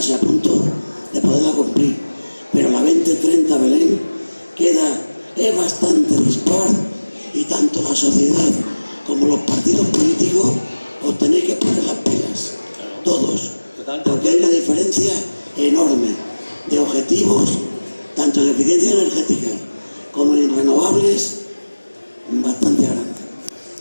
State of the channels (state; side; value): inverted; both; correlation -1.00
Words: a punto de poderla cumplir, pero la 2030 Belén es bastante dispar, y tanto la sociedad como los partidos políticos os tenéis que poner las pilas, todos, porque hay una diferencia enorme de objetivos, tanto en eficiencia energética como en renovables, bastante grande.